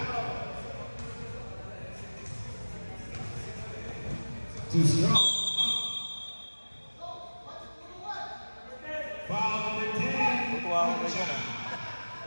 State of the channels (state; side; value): inverted; both; correlation -1.00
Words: Too strong. Foul number 10. Tutuwa ako kay Jan, ah.